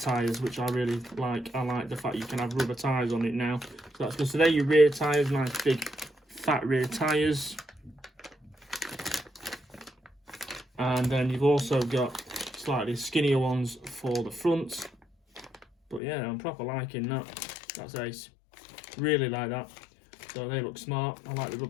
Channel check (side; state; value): right; drops out; at 16.0 s